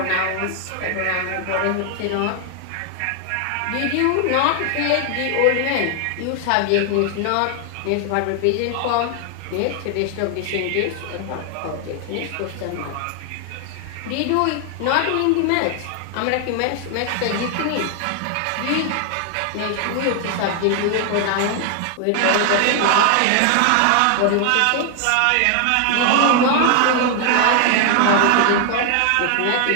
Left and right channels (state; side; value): different; both; correlation 0.00